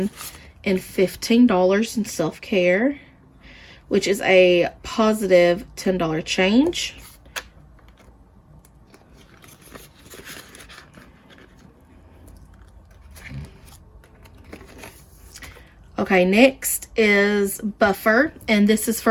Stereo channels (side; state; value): both; identical; correlation 1.00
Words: and $15 in self-care, which is a positive $10 change. Okay, next is buffer, and this is